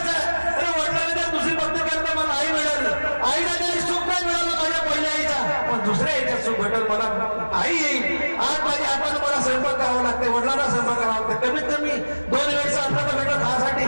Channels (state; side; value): inverted; both; correlation -1.00